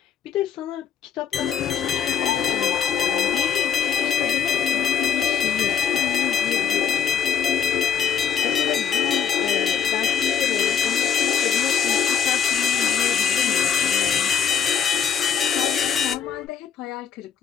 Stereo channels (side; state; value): right; quieter; 7.8 dB